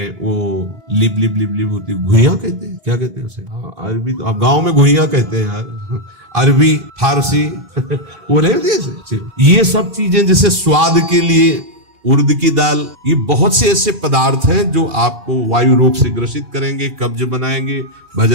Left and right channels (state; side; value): late; left; 2.9 ms